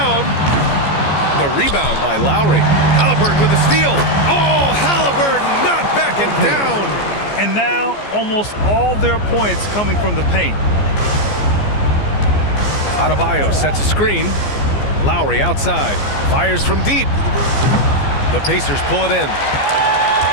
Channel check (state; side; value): late; right; 14 ms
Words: the rebound by Lowry. Haliburton with the steal. Oh, Haliburton not backing down. And now almost all their points coming from the paint. Adebayo sets a screen. Lowry outside. Fires from deep. The Pacers pull it in.